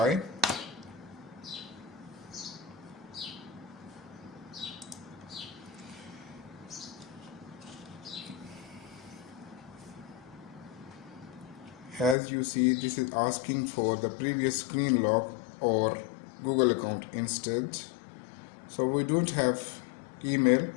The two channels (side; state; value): right; drops out; at 12.2 s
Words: As you see, this is asking for the previous screen lock or Google account instead. So we don't have email,